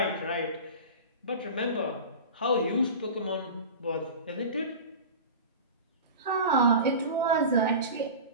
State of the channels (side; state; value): both; inverted; correlation -0.32